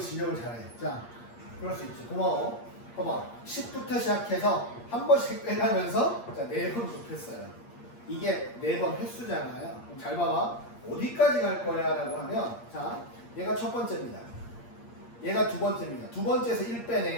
지적을 잘해. 자, 그럴 수 있지. 고마워. 봐봐. 10부터 시작해서 한 번씩 빼가면서 자, 4번 곱했어요. 이게 4번 횟수잖아요. 그럼 잘 봐봐. 어디까지 갈 거야? 라고 하면 자, 얘가 첫 번째입니다. 얘가 두 번째입니다. 두 번째에서 1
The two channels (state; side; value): late; right; 8.5 ms